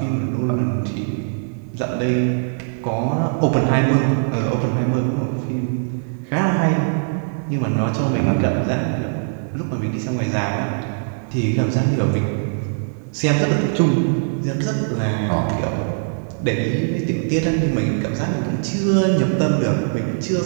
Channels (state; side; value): silent; left; 62 dB below the other